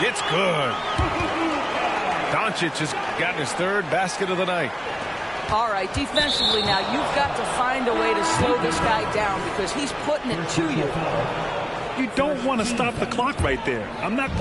It's good. Doncic has gotten his third basket of the night. All right, defensively now, you've got to find a way to slow this guy down because he's putting it to you. You don't want to stop the clock right there. I'm not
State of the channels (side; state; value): both; identical; correlation 1.00